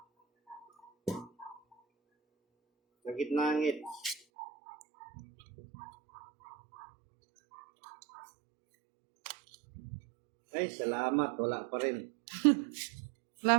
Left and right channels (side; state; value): left; drops out; at 4.2 s